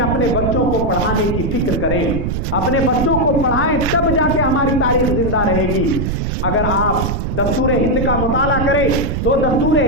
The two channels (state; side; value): noise; right; rumble, 2 dB below the sound